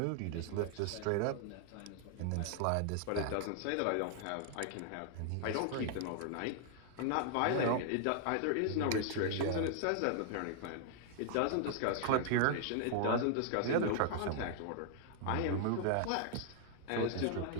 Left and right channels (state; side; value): different; both; correlation 0.00